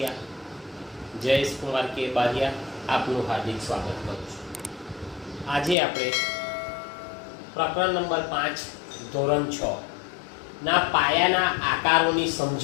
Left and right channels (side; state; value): right; drops out; at 5.8 s